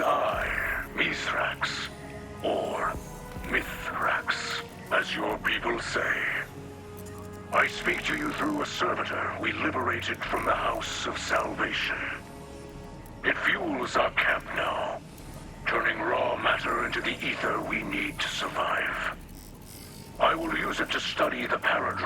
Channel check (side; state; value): both; identical; correlation 1.00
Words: Mithrax, or Mithrax, as your people say. I speak to you through a servitor we liberated from the House of Salvation. It fuels our camp now, turning raw matter into the ether we need to survive. I will use it to study the